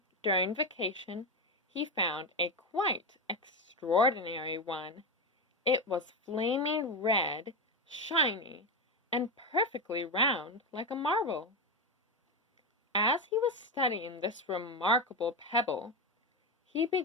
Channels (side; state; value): both; normal; correlation 0.13